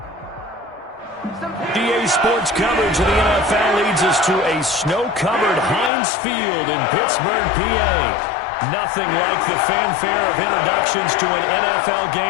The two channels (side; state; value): right; drops out; at 5.9 s